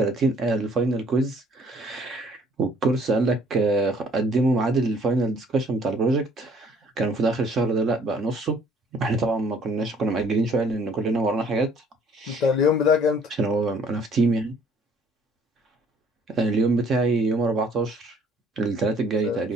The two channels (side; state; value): both; normal; correlation 0.59